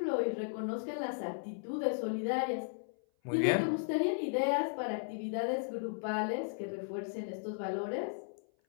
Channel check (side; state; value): right; silent; 54 dB below the other